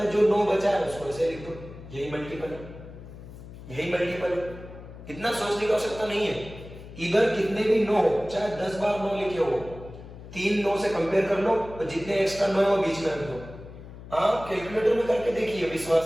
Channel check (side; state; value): left; noise; hum, 15 dB below the sound